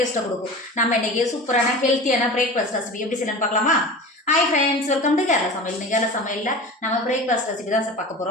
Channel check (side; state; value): both; normal; correlation 0.34